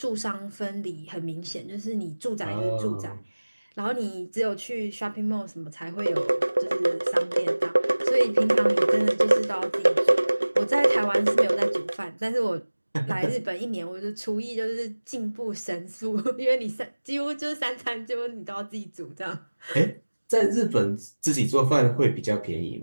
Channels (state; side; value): inverted; both; correlation -1.00